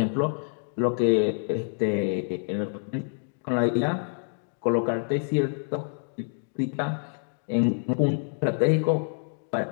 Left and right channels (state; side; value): silent; right; digital silence